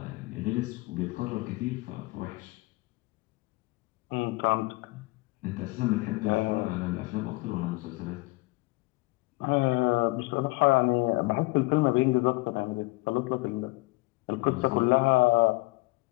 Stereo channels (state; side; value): quieter; right; 23.2 dB